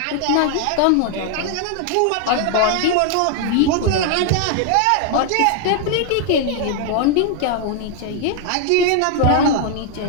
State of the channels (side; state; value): both; different; correlation 0.00